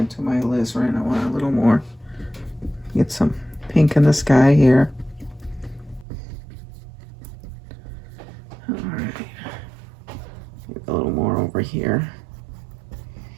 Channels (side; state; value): left; drops out; at 6.1 s